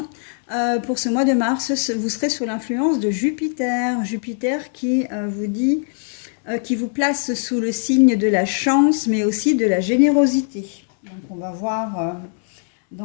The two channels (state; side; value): silent; right; 65 dB below the other